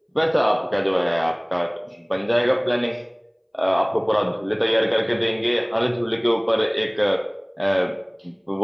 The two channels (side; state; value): both; identical; correlation 1.00